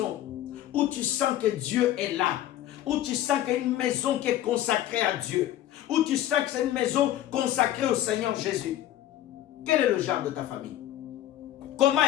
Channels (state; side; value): quieter; right; 12.9 dB